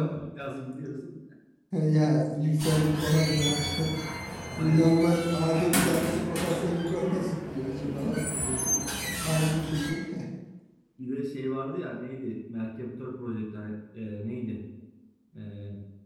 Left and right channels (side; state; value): both; identical; correlation 1.00